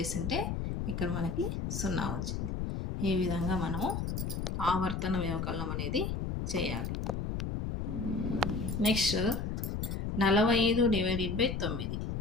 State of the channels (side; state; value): left; noise; rumble, 2 dB below the sound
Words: ఇక్కడ మనకి 0 వచ్చింది. ఈ విధంగా మనము ఆవర్తన వ్యవకలనం అనేది చేయాలి. Next 45 divided by 9.